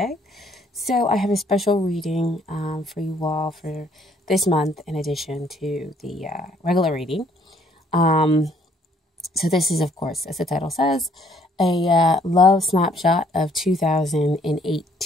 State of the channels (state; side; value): normal; both; correlation 0.64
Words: So I have a special reading for you all for this month in addition to the regular reading. So this is, of course, as the title says, a love snapshot of